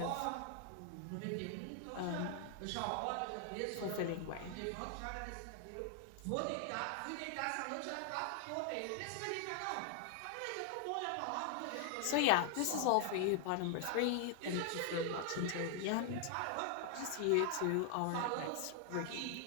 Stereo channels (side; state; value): both; different; correlation 0.00